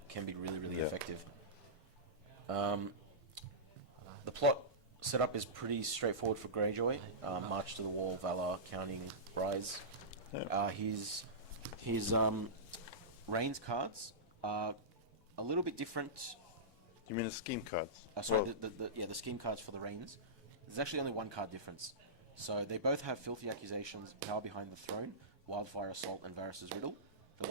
can be really effective. The plot setup is pretty straightforward for Greyjoy. March to the Wall, Valor, Counting, Rise. Yeah. His Rains cards are a little bit different. You mean the scheme cards? Sorry, the scheme cards for the Rains. There's actually only one card difference. So they both have Filthy Accusations, Power Behind the Throne, Wildfire Assault, and Varys' Riddle. The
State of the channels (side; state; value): both; normal; correlation -0.16